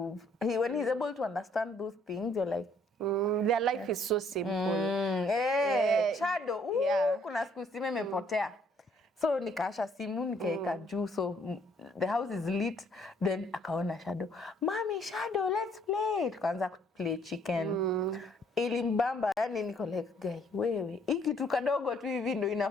when he's able to understand those things, you're like, their life is so simple. Shadow, kuna siku simu imepotea. So nikaasha simu nikaeka juu, so the house is lit. Then akaona Shadow, Mommy, Shadow, let's play. Tukaanza play chicken. Ilimbamba, yani niko like, guy, wewe hii kitu kadogo tu hivi ndo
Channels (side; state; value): both; normal; correlation 0.64